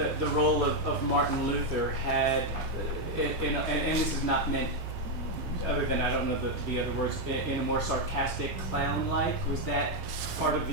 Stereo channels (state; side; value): normal; both; correlation 0.02